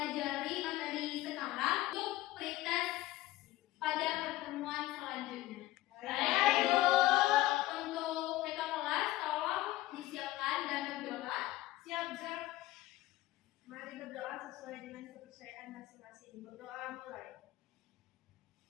materi sekarang untuk pretest pada pertemuan selanjutnya. Baik. Untuk kakak kelas tolong disiapkan dan berdoa. Siap, Zak. Mari berdoa sesuai dengan kepercayaan masing-masing. Berdoa mulai.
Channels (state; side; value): quieter; right; 16.7 dB